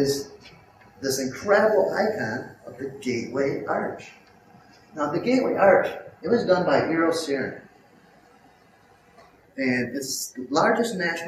this incredible icon of the Gateway Arch. Now, the Gateway Arch, it was done by Eero Saarinen, and it's the largest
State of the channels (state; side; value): identical; both; correlation 1.00